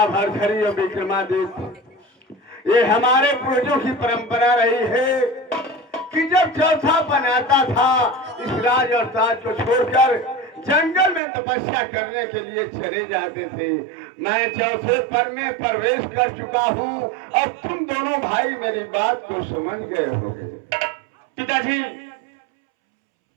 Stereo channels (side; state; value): left; drops out; at 11.2 s